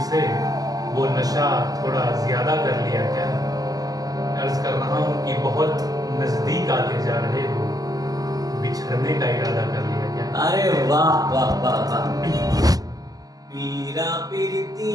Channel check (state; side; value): late; left; 0.18 ms